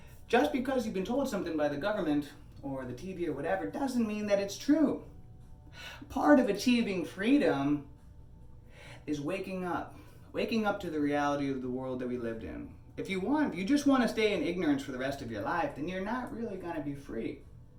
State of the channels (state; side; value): identical; both; correlation 1.00